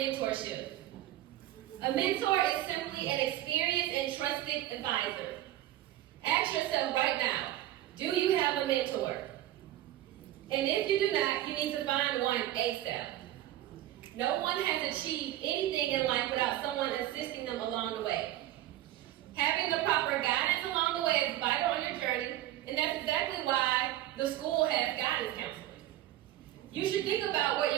A mentor is simply an experienced and trusted advisor. Ask yourself right now, do you have a mentor? And if you do not, you need to find one ASAP. No one has achieved anything in life without someone assisting them along the way. Having the proper guidance along the way is vital on your journey, and that's exactly why the school has guidance counselors. You should think about what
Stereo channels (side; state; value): left; quieter; 14.2 dB